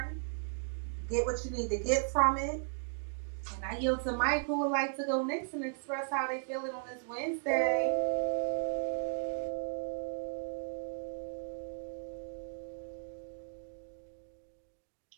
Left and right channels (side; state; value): left; silent; digital silence